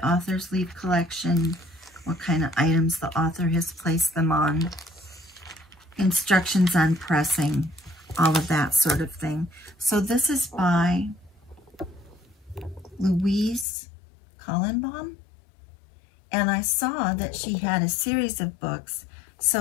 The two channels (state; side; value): drops out; right; at 13.7 s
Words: author's leaf collection, what kind of items the author has placed them on, instructions on pressing, all of that sort of thing. So this is by Louise Collenbaum. And I saw that she had a series of books,